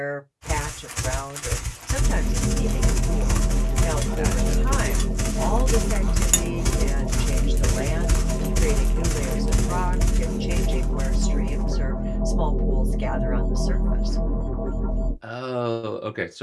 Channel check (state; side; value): identical; both; correlation 1.00